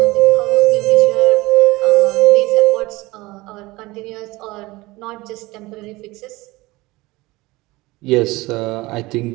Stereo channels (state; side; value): quieter; left; 20.9 dB